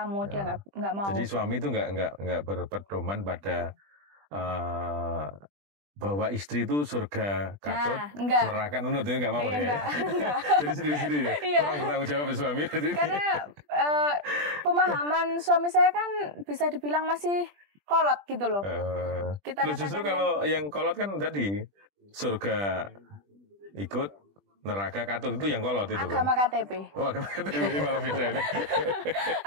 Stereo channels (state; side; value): late; left; 20 ms